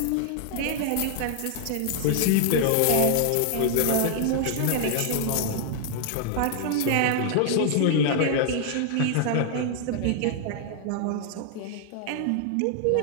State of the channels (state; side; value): different; both; correlation 0.00